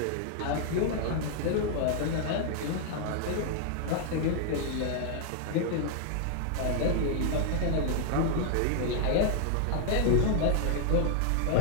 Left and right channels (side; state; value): both; different; correlation 0.00